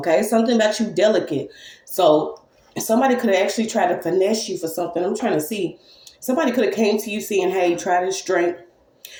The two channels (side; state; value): both; identical; correlation 1.00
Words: something about you delicate. So somebody could have actually tried to finesse you for something. I'm trying to see. Somebody could have came to you saying, "Hey, try this drink.